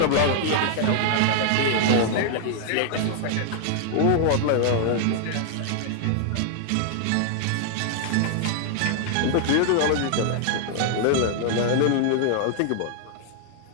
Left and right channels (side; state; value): both; different; correlation 0.00